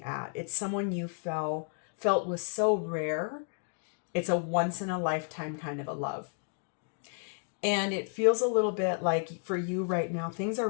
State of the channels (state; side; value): silent; right; 56 dB below the other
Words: at. It's someone you felt was so rare. It's a once in a lifetime kind of a love. And it feels a little bit like for you right now, things are